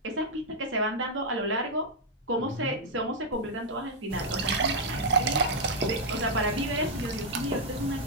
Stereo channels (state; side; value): normal; both; correlation -0.03